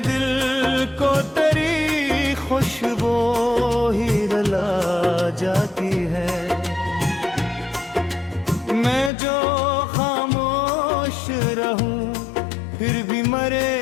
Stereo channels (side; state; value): right; drops out; at 9.1 s